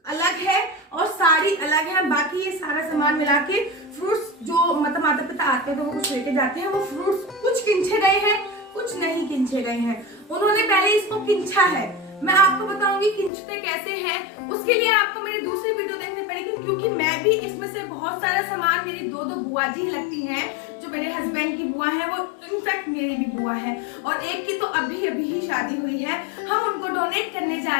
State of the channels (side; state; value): right; drops out; at 13.3 s